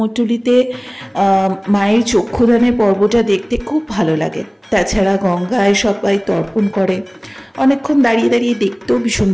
মায়ের চক্ষুদানের পর্বটা দেখতে খুব ভালো লাগে। তাছাড়া গঙ্গায় সবাই তর্পণ করে, অনেকক্ষণ দাঁড়িয়ে দাঁড়িয়ে দেখতেও ভীষণ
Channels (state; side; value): identical; both; correlation 1.00